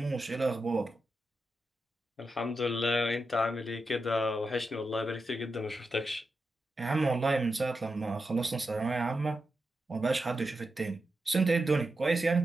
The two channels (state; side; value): normal; both; correlation 0.88